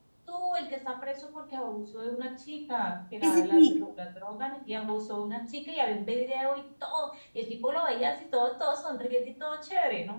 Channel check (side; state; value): both; inverted; correlation -1.00